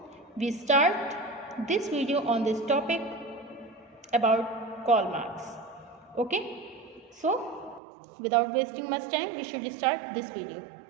we start this video on this topic about Karl Marx. Okay, so without wasting much time, we should start this video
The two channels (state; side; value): drops out; left; at 7.8 s